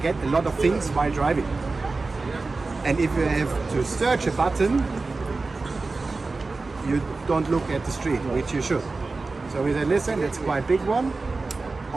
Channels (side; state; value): left; quieter; 3.7 dB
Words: a lot of things while driving. And if you have to search a button, you don't look at the street, which you should. So we said, listen, it's quite a big one.